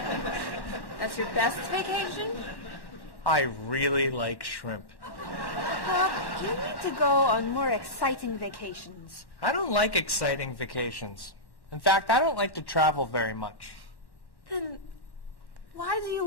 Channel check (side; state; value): right; late; 1.1 ms